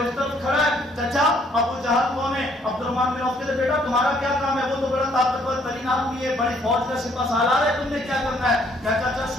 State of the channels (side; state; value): both; normal; correlation 0.65